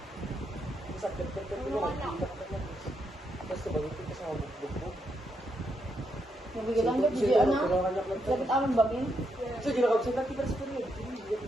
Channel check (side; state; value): both; normal; correlation 0.80